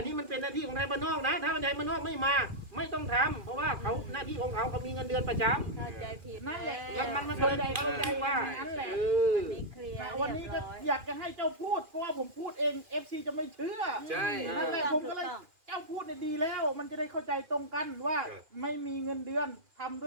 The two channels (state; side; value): late; left; 2.4 ms